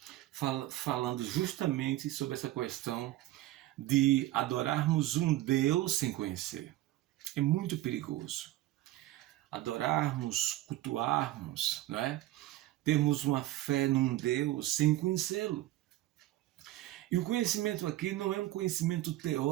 falando justamente sobre essa questão de adorarmos um Deus sem conhecer. É muito perigoso. Adorarmos, cultuarmos, não é? Termos uma fé num Deus sem conhecê-lo. E o conhecimento aqui não é um conhecimento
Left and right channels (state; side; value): quieter; left; 15.7 dB